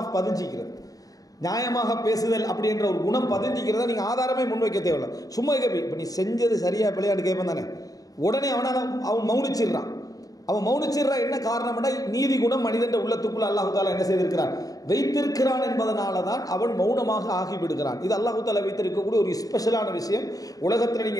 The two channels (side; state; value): right; late; 0.18 ms